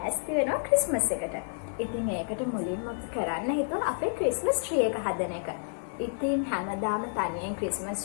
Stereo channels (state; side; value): silent; right; 55 dB below the other